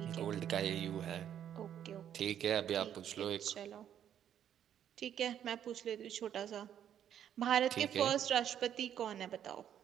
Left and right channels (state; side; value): quieter; left; 9.8 dB